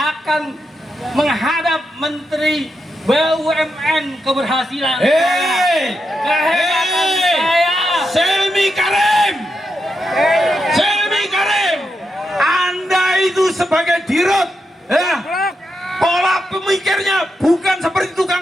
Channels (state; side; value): normal; both; correlation 0.85